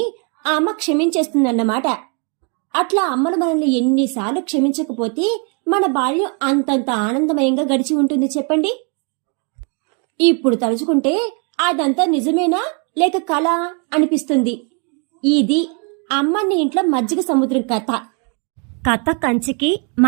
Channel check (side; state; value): left; quieter; 37.5 dB